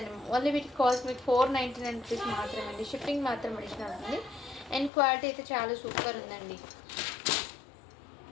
ఓన్లీ వీటికి కాస్ట్ మీకు 499 రూపీస్ మాత్రమే అండి. షిప్పింగ్ మాత్రం అడిషనల్ ఉంటుంది. అండ్ క్వాలిటీ అయితే చాలా సూపర్ ఉందండి.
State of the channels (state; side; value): drops out; right; at 4.9 s